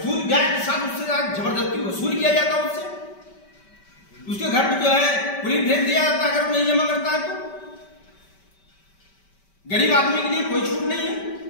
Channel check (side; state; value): right; late; 5.2 ms